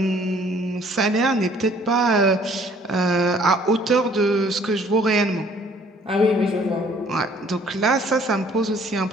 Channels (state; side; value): normal; both; correlation 0.58